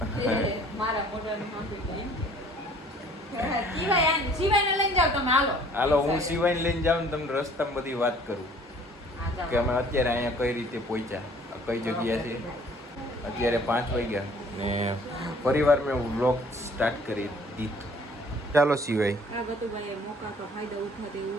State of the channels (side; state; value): both; normal; correlation 0.55